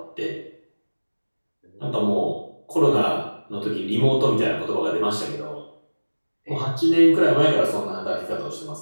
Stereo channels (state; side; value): inverted; both; correlation -1.00